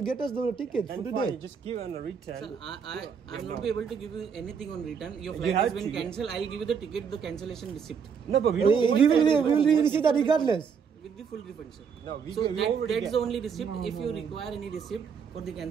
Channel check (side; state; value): left; quieter; 6.5 dB